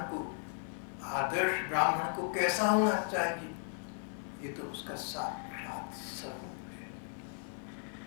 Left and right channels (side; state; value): right; silent; 54 dB below the other